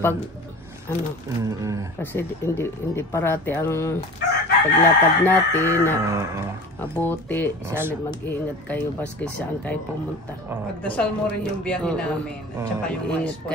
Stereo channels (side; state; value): both; normal; correlation 0.38